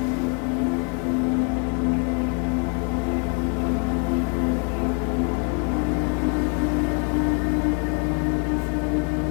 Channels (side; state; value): right; quieter; 35.7 dB